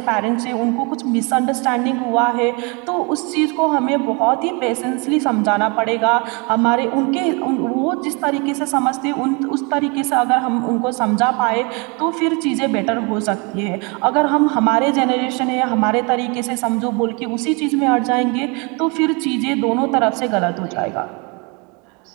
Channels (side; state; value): left; quieter; 30.7 dB